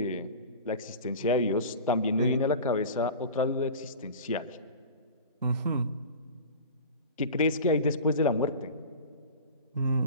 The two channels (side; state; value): both; inverted; correlation -0.35